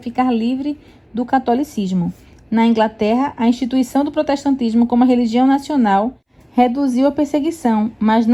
livre do catolicismo. Na Inglaterra, a instituição do protestantismo como religião nacional reduziu a perseguição, mas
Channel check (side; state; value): both; identical; correlation 1.00